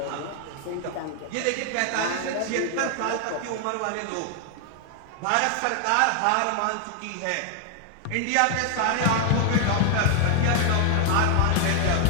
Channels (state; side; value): different; both; correlation 0.00